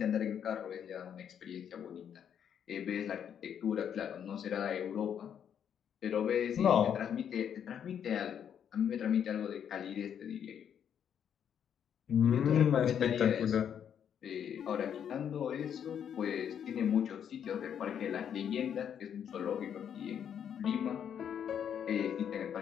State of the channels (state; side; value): quieter; right; 8.6 dB